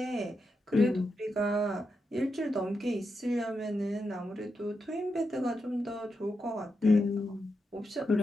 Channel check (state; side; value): normal; both; correlation 0.86